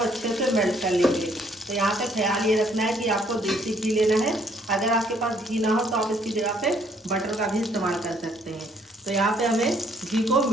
से मेल्ट कर लेंगे। तो यहाँ पे ख्याल ये रखना है कि आपको देसी घी लेना है। अगर आपके पास घी ना हो तो आप इसकी जगह पे बटर का भी इस्तेमाल कर सकते हैं। तो यहाँ पे हमें घी को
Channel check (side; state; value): both; normal; correlation 0.65